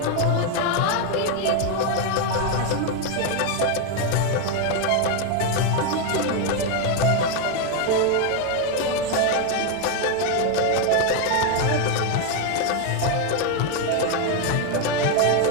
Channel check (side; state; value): both; different; correlation 0.02